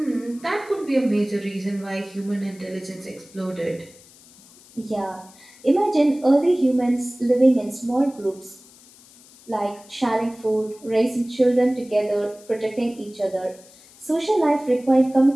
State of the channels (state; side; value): noise; left; hiss, 24 dB below the sound